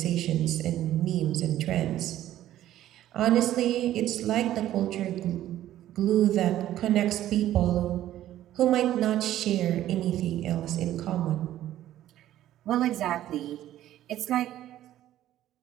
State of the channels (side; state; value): left; quieter; 13.0 dB